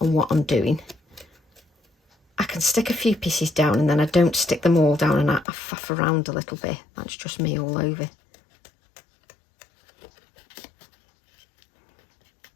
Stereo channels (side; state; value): right; drops out; at 5.5 s